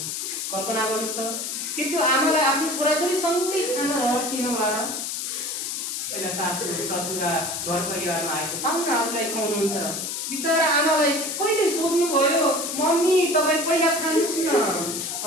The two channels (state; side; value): noise; left; hiss, 4 dB below the sound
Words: कल्पना गर्नुहोस् त कि त्यो आमालाई आफ्नो छोराछोरी सँगै खाना रहिएन होला। पहिला सासू ससुरा घर परिवारमा आएको पाहुनाहरूलाई खुवाउनुहुन्छ। बिचरा आमालाई कहिले सोध्नुभयो मम्मी तपाईँ पहिला खानुहोस् न?